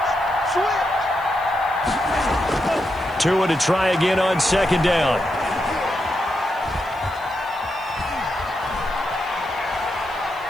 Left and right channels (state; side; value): noise; right; hiss, 25 dB below the sound